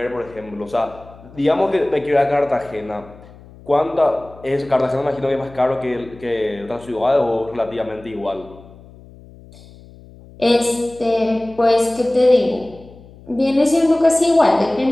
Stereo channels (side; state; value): left; noise; hum, 22 dB below the sound